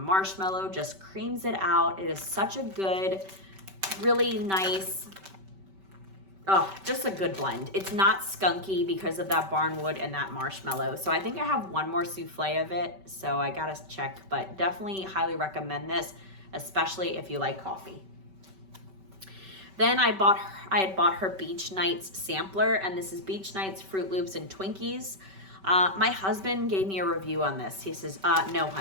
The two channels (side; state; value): left; late; 5.2 ms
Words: just creams it out. It is such a good, really nice, just a good blend. It's not skunky because of that Barnwood and that Marshmallow. So I think I have one more souffle of it, so I gotta check, but definitely highly recommend this, especially if you like coffee. Then I had bought her Beach Nights sampler, and this is Beach Nights Fruit Loops and Twinkies. My husband gave me a review on this. He says, no,